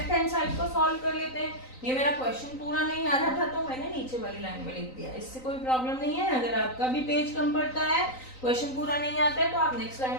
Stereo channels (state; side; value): late; right; 3.9 ms